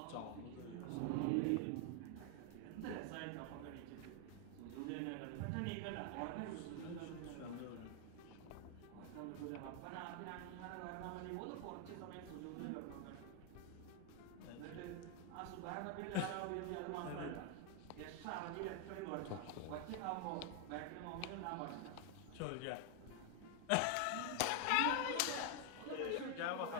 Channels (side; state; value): both; different; correlation 0.00